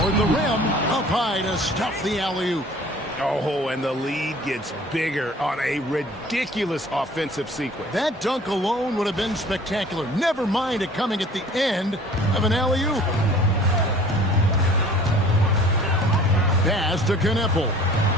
the rim. Up high to stuff the alley-oop. Oh, and the lead gets bigger on a ridiculous offensive sequence. That dunk alone would have been spectacular. Never mind it coming at the end of an alley-oop. Pass to Knipple.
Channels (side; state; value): both; normal; correlation 0.49